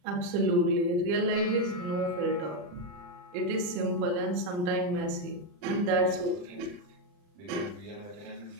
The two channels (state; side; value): late; left; 40 ms